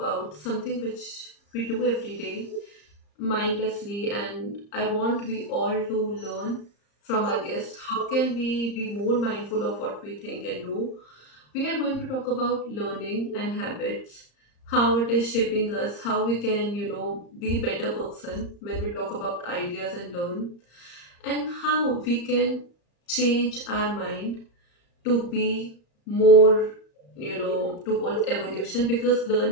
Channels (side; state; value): right; late; 35 ms